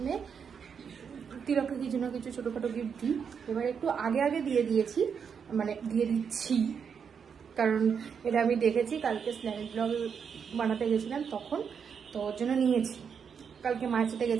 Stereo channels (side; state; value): left; quieter; 6.8 dB